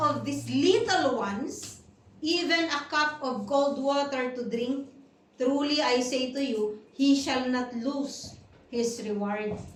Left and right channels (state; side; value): identical; both; correlation 1.00